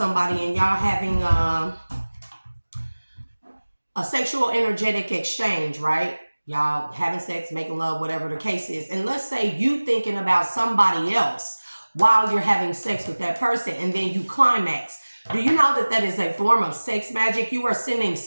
and y'all having a sexual energetic exchange, right? Y'all having sex, making love, whatever the case is. And let's say you thinking about somebody else while you're having sex with that person and then you climax. Do you know that that is a form of sex magic? You are sending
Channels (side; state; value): both; inverted; correlation -1.00